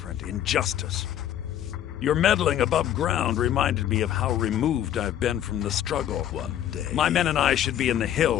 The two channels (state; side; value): quieter; right; 11.0 dB